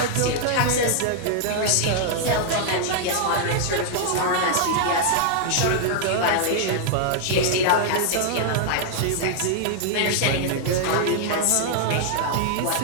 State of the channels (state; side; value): different; both; correlation -0.01